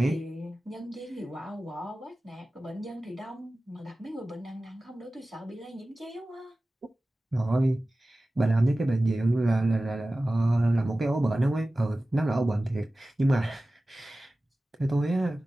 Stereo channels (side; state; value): both; normal; correlation 0.96